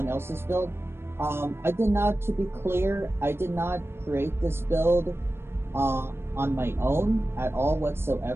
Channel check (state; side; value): late; left; 0.12 ms